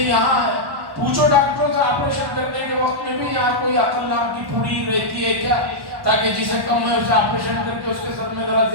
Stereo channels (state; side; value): late; left; 1.1 ms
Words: یہاں ہے، پوچھو ڈاکٹروں سے آپریشن کرنے کے وقت میں بھی یہاں کوئی عقل نام کی پھوڑی رہتی ہے کیا، تاکہ جسے کم ہے اسے آپریشن کر کے اس کے سر میں ذرا